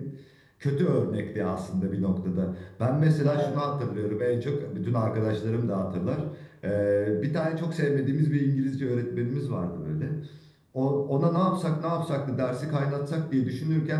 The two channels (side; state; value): both; identical; correlation 1.00